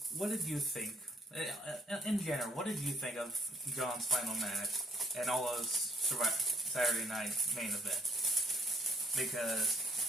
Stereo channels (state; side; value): normal; both; correlation 0.65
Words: what did you think? In general, what did you think of John's final match and all those Saturday night main events?